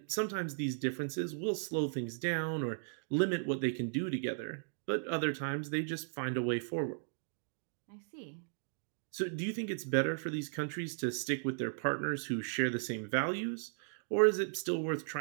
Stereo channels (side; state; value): left; silent; digital silence